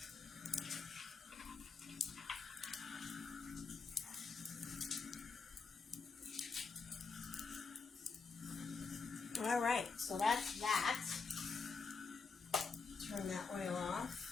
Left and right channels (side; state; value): right; quieter; 4.8 dB